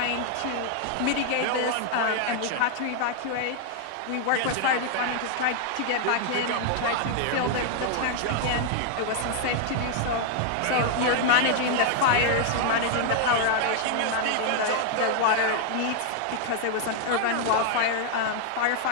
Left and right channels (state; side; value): different; both; correlation 0.00